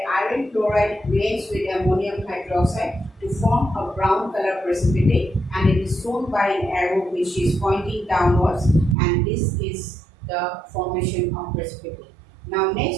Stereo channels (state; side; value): drops out; left; at 9.0 s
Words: iron chloride reacts with ammonium hydroxide to form a brown color precipitate, and it is shown by an arrow which is pointing downwards, and this is the formation of precipitate. Now